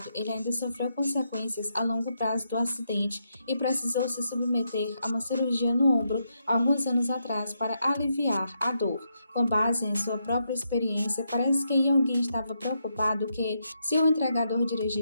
ele ainda sofreu consequências a longo prazo do acidente e precisou se submeter a uma cirurgia no ombro alguns anos atrás para aliviar a dor. Com base em sua própria experiência, parece que Yoongi estava preocupado que, se o entregador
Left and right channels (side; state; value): both; inverted; correlation -0.81